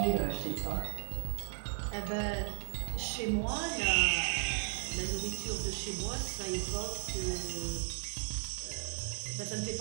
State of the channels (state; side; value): quieter; left; 31.5 dB